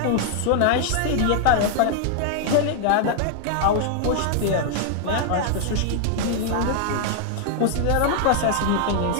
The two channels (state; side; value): different; both; correlation 0.00